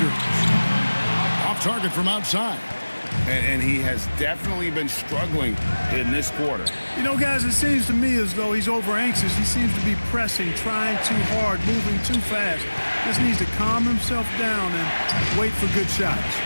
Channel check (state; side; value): inverted; both; correlation -1.00